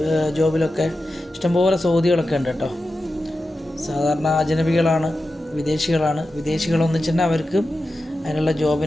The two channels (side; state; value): both; normal; correlation 0.92